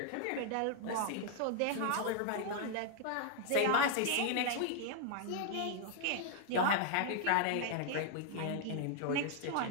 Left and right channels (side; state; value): both; different; correlation 0.00